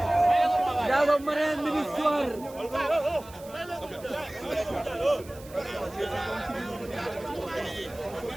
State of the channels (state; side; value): noise; right; hiss, 21 dB below the sound